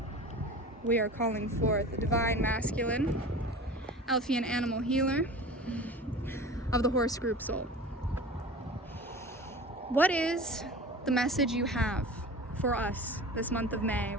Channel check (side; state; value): both; normal; correlation 0.36